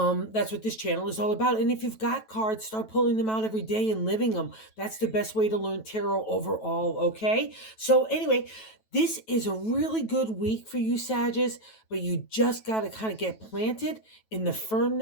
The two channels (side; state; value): right; late; 9.2 ms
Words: what this channel is all about. And if you've got cards, start pulling them out every day and living them. That's the best way to learn tarot overall, okay? So anyway, this is a really good week for you, Sagittarius, but you just got to kind of get planted in the